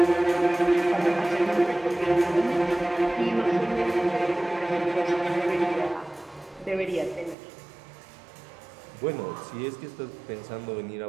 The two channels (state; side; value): drops out; left; at 7.4 s